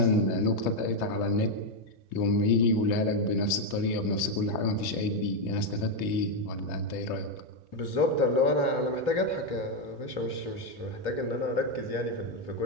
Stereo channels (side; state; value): right; late; 3.0 ms